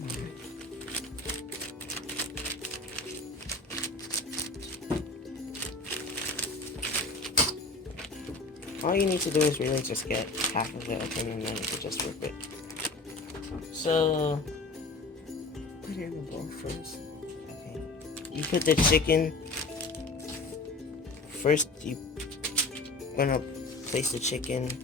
on. All you need to do is really just get half of it open, and then you can just rip it. So put it in the bowl first. Okay. You put the chicken first. You gonna place the chicken.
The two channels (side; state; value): right; quieter; 3.3 dB